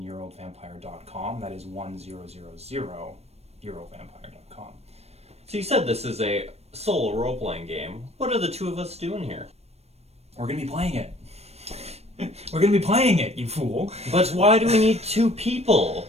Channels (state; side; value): late; left; 0.31 ms